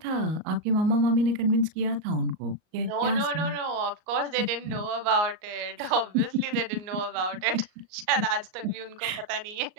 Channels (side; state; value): left; late; 38 ms